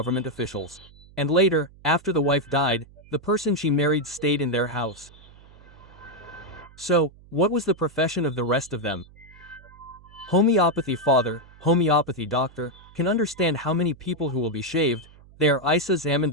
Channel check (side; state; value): right; noise; hum, 24 dB below the sound